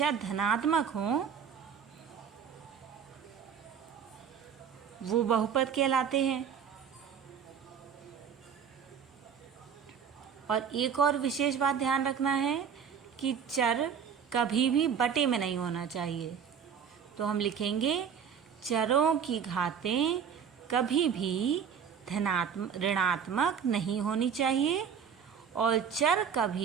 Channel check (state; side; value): quieter; left; 7.4 dB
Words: धनात्मक हों वो बहुपद कहलाते हैं। और एक और विशेष बात ध्यान रखना है कि चर कभी भी बटे में नहीं होना चाहिए। तो हम लिखेंगे चरों की घातें कभी भी ऋणात्मक नहीं होनी चाहिए और चर